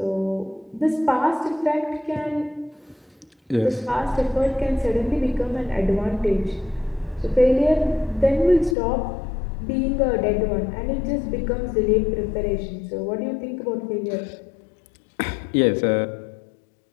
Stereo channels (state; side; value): drops out; right; at 8.8 s